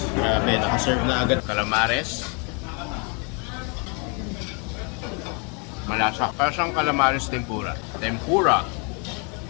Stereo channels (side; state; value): right; quieter; 35.1 dB